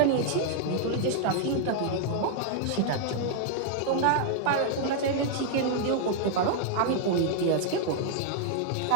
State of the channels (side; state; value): both; different; correlation -0.01